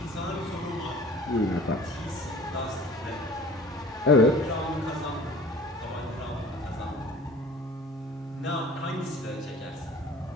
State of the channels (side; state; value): both; normal; correlation 0.46